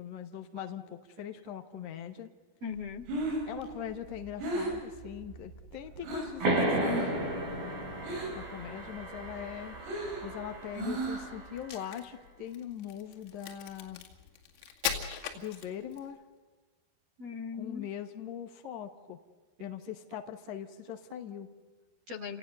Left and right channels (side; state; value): left; late; 12 ms